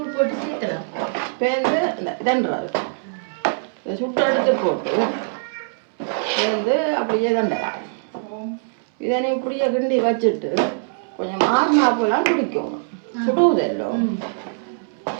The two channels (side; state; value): left; silent; 64 dB below the other